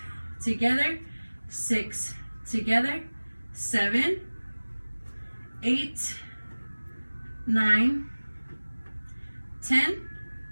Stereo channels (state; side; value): inverted; both; correlation -1.00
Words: together, 6, together, 7, 8, 9, 10,